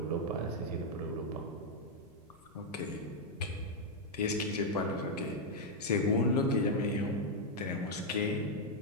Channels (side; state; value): left; noise; rumble, 30 dB below the sound